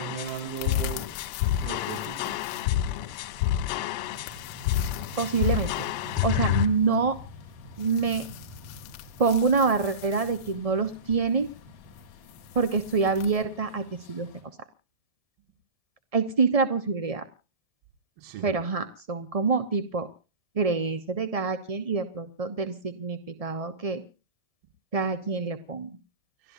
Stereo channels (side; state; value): left; late; 1.7 ms